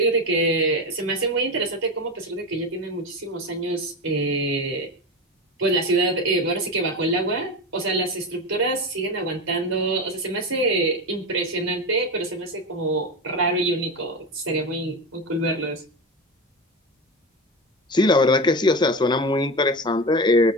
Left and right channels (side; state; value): both; normal; correlation 0.21